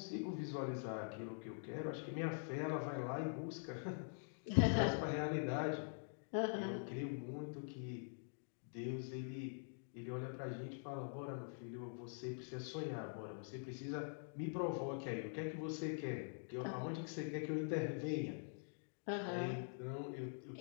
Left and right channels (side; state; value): right; silent; digital silence